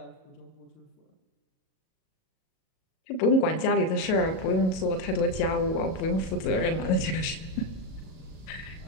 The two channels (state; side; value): late; right; 37 ms